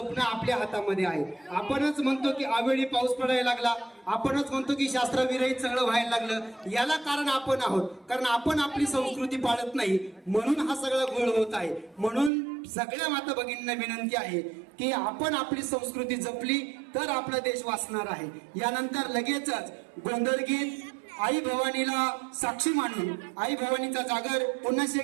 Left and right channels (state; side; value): drops out; left; at 12.3 s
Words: आपल्या हातामध्ये आहे. आपणच म्हणतो की अवेळी पाऊस पडायला लागला, आपणच म्हणतो की शास्त्रविरहित सगळं व्हायला लागलं. याला कारण आपण आहोत, कारण आपण आपली संस्कृती पाळत नाही म्हणून हा सगळा गोळ होत आहे. म्हणून सगळ्या माता भगिनींना विनंती आहे की आपण आपली संस्कृती जपली तर आपला देश वाचणार आहे. यानंतर लगेचच गोंधळ गीत आई भवानीला साक्षी मानून आई भवानीचा जागर पुन्हा